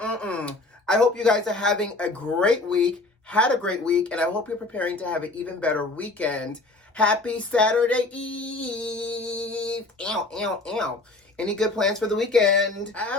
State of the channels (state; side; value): quieter; right; 3.2 dB